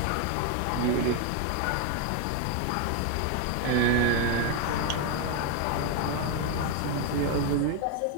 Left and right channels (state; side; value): different; both; correlation 0.01